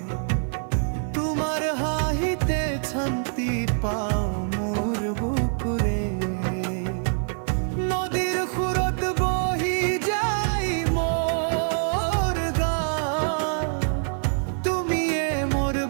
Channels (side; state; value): left; silent; 58 dB below the other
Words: তোমাৰ হাঁহিতে শান্তি পাওঁ মোৰ বুকুৰে নদীৰ সুৰত বহি যায় মোৰ গান তুমিয়ে মোৰ